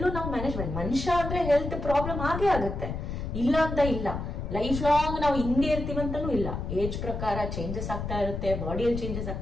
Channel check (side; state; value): left; noise; rumble, 5 dB below the sound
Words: ನಾವು ಮ್ಯಾನೇಜ್ಮೆಂಟ್, ಮನುಷ್ಯ ಅಂದ್ರೆ ಹೆಲ್ತ್ ಪ್ರಾಬ್ಲಮ್ ಆಗೇ ಆಗುತ್ತೆ, ಇಲ್ಲ ಅಂತ ಇಲ್ಲ. ಲೈಫ್ ಲಾಂಗ್ ನಾವು ಹಿಂಗೆ ಇರ್ತೀವಂತನೂ ಇಲ್ಲ. ಏಜ್ ಪ್ರಕಾರ ಚೇಂಜಸ್ ಆಗ್ತಾ ಇರುತ್ತೆ, ಬಾಡಿಯಲ್ಲಿ ಚೇಂಜಸ್